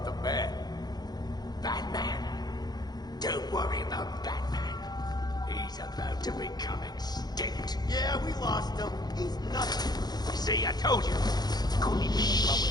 the Bat? Batman? Don't worry about Batman. He's about to become extinct. Yeah, we lost him. He's nothing. See, I told you. Couldn't even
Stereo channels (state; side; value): late; right; 0.19 ms